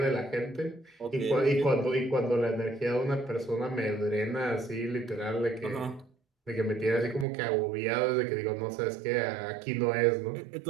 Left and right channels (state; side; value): drops out; left; at 7.2 s